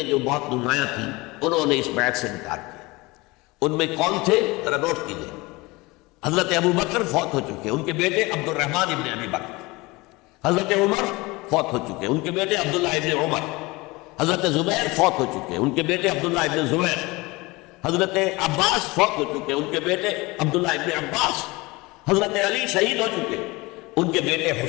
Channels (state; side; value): quieter; right; 23.1 dB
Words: جو بہت نمایاں تھیں انہوں نے اس بیعت سے انکار کیا۔ ان میں کون تھے ذرا نوٹ کیجیے. حضرت ابو بکر فوت ہو چکے، ان کے بیٹے عبد الرحمن ابن ابی بکر. حضرت عمر فوت ہو چکے، ان کے بیٹے عبداللہ ابن عمر. حضرت زبیر فوت ہو چکے، ان کے بیٹے عبداللہ ابن زبیر. حضرت عباس فوت ہو چکے، ان کے بیٹے عبداللہ ابن عباس. حضرت علی شہید ہو چکے، ان کے بیٹے